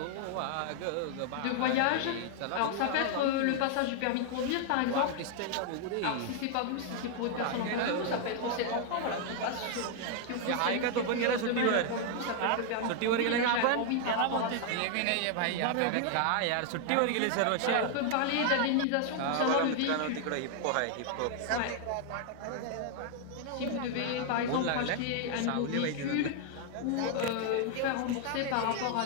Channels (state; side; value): different; both; correlation 0.00